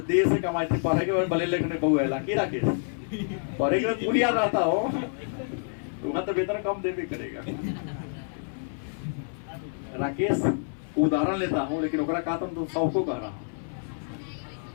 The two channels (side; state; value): right; silent; 59 dB below the other